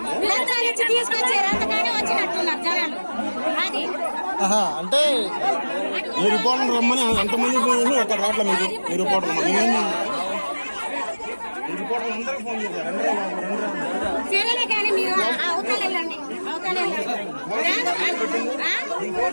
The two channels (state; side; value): inverted; both; correlation -1.00